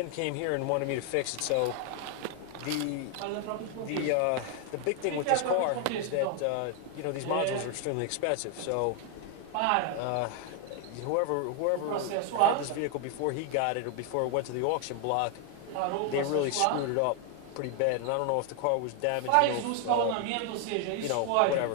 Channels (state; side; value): different; both; correlation 0.00